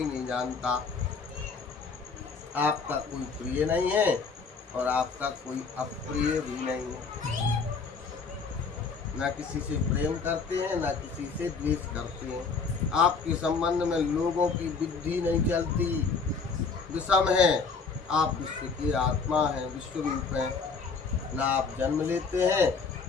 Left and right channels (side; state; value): right; quieter; 4.9 dB